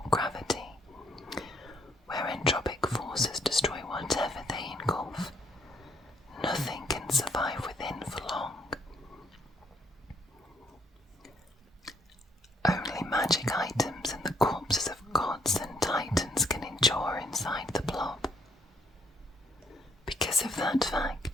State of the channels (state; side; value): normal; both; correlation 0.69